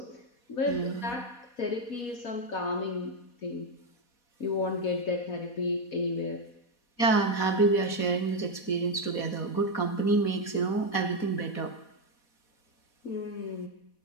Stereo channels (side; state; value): right; late; 4.1 ms